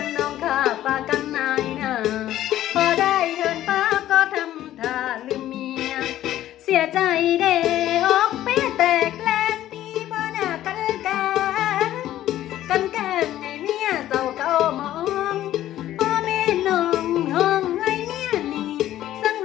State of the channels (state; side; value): quieter; right; 13.2 dB